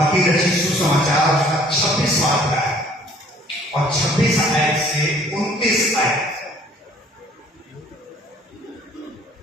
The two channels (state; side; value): normal; both; correlation 0.56